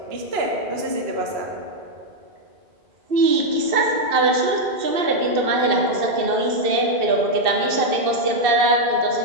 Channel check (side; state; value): left; late; 2.6 ms